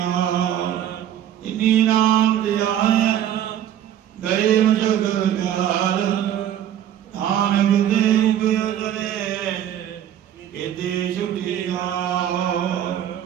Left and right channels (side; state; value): left; quieter; 10.8 dB